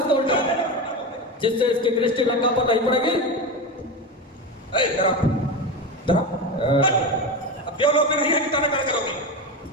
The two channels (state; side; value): normal; both; correlation 0.20